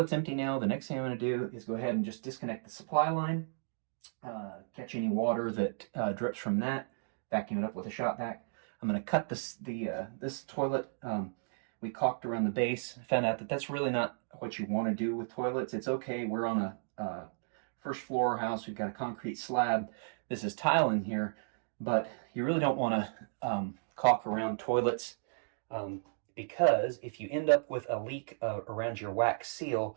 empty now. The next thing I'm going to do is go ahead and just disconnect the supply line, catch any water that drips from that, vacuum it up with a shop vac. I'm going to cut this toilet. We caulked around the base. Found out that that's really not what you want to do with toilets. It's okay. We're on a first floor house. We've got a concrete slab. This is tile in here, but you really don't want to caulk around toilets. Because if you end up with a leak around your wax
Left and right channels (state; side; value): silent; left; digital silence